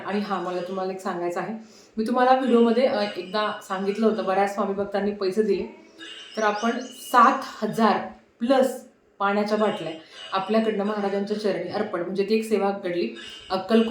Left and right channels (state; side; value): identical; both; correlation 1.00